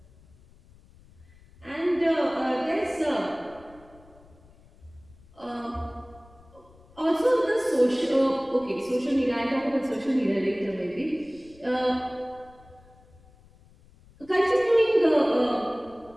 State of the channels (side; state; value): left; noise; rumble, 26 dB below the sound